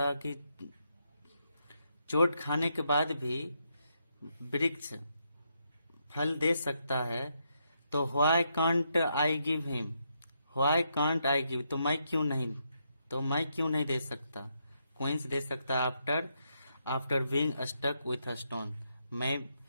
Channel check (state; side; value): inverted; both; correlation -0.79